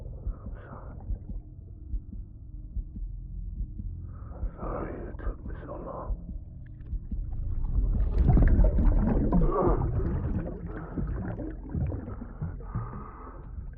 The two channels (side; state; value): both; identical; correlation 1.00